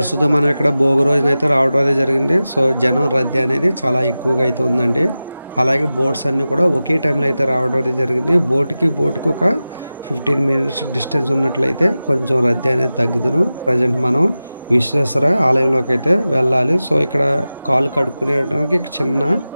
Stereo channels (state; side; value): inverted; both; correlation -0.95